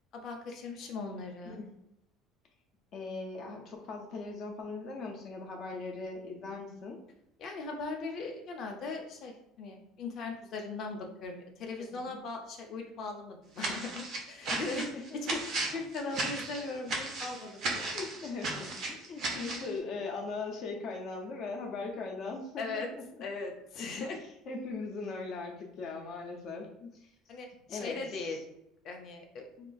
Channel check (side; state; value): both; normal; correlation 0.50